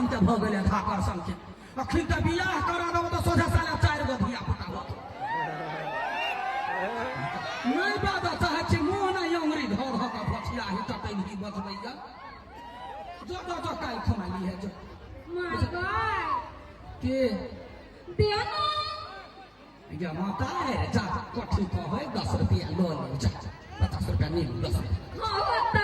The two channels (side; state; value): both; identical; correlation 1.00